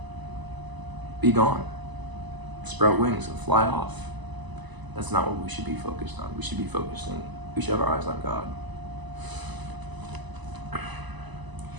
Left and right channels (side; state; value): left; late; 1.0 ms